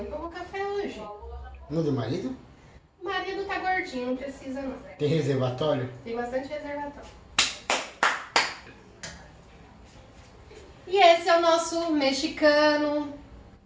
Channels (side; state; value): both; identical; correlation 1.00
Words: tomou café hoje. No do marido? O marido tá gordinho, não precisa não. Tem reservatório? Tem bastante reservatório. E esse é o nosso mexicano.